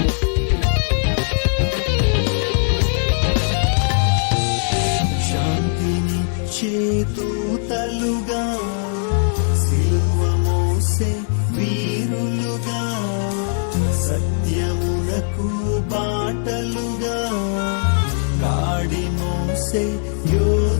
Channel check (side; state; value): right; silent; digital silence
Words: శాంతిని చేతూతలుగా సిలువ మోసే వీరులుగా సత్యమునకు బాటలుగా కాడి మోసే